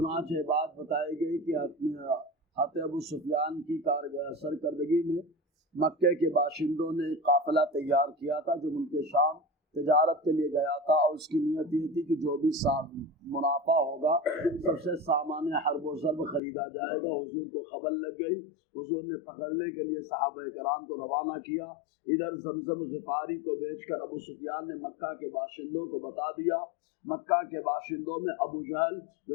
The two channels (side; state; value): right; drops out; at 16.4 s